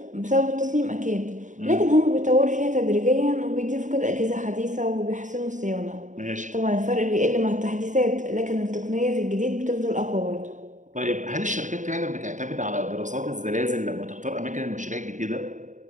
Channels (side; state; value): left; late; 0.36 ms